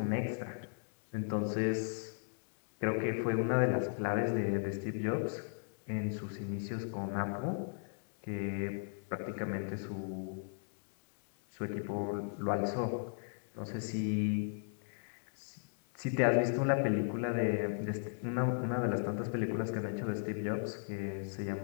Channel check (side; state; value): right; silent; digital silence